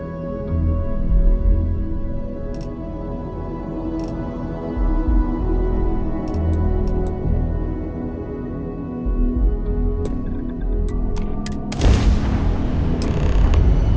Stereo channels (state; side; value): identical; both; correlation 1.00